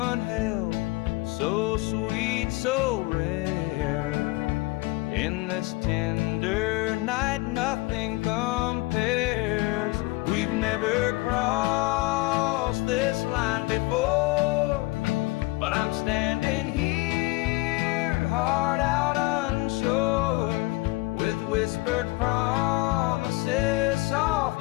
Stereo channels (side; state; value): right; quieter; 22.5 dB